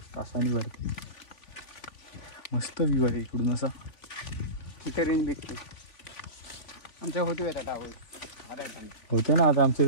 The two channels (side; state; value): right; late; 3.5 ms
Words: तासांनी भरती. मस्त व्ह्यू आहे इकडून असा. इथे रेंज भेटते. आमच्या होतो येतात टावर होते ना आता आमच्या